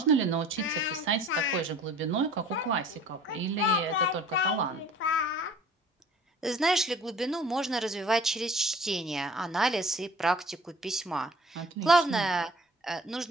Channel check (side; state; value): both; normal; correlation 0.49